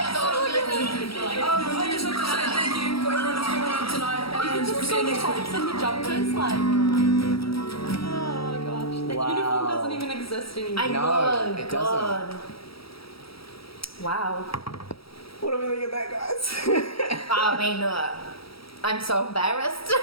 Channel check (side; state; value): right; late; 0.75 ms